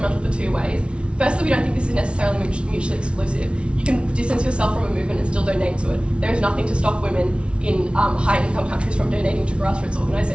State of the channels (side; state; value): left; late; 0.059 ms